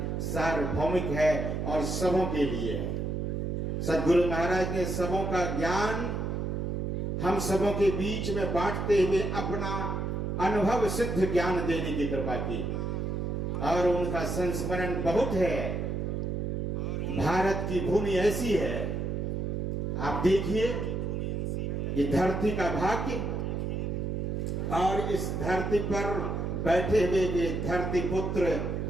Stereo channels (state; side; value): noise; right; hum, 2 dB below the sound